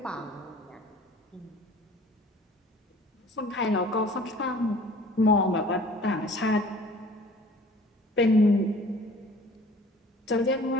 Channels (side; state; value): both; normal; correlation 0.49